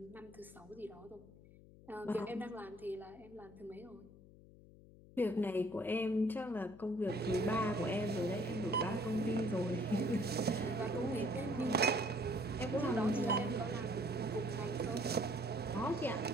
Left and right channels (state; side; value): noise; left; hum, 21 dB below the sound